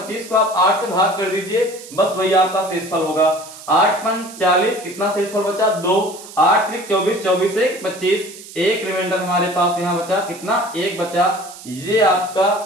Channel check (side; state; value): right; noise; hiss, 16 dB below the sound